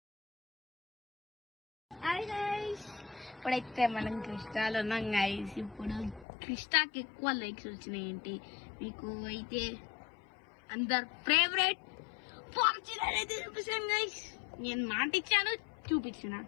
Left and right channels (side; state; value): right; drops out; at 6.2 s